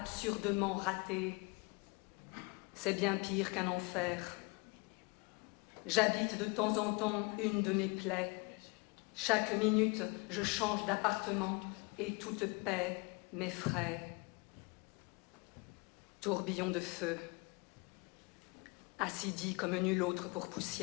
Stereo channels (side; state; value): right; quieter; 29.1 dB